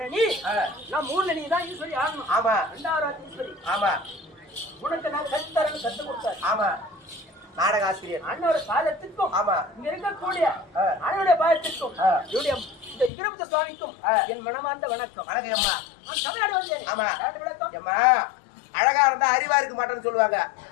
ஆ, நான் மூணு நீ தான் ஈஸ்வரி ஆகணும். ஆமா. 2வது ஈஸ்வரி ஆமா. உனக்கு நான் கற்றுத்தரேன்னு கற்றுக் கொடுத்தாரு. ஆமா. நாடக ஆசிரியர் அண்ணோட பாதத்திற்கும் ஆமா. இங்க இருக்கக்கூடிய ஆ. அண்ணனுடைய பாதத்திற்கும் ஆ. என்னுடைய இந்த வீரபத்ர சுவாமிக்கும் ஆ. என் மனமார்ந்த வணக்கம். வணக்கம் அம்மா. நான் தமிழ்நாடு வந்தேன். ஆமா. விளக்கம் அம்மா அழகா இருந்தா அறிவா இருக்க மாட்டேன்னு சொல்லுவாங்க.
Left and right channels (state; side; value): drops out; right; at 13.1 s